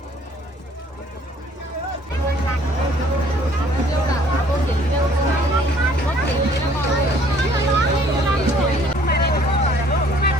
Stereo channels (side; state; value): both; normal; correlation 0.58